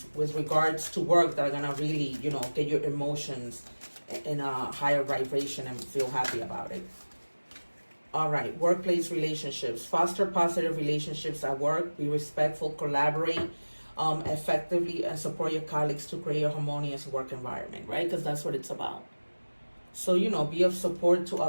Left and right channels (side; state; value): both; inverted; correlation -1.00